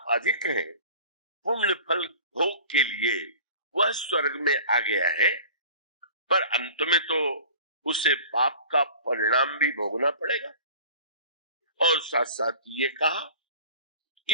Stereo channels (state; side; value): inverted; both; correlation -0.43